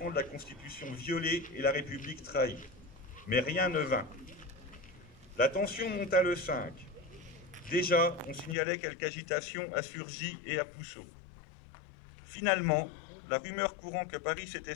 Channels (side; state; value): right; drops out; at 8.6 s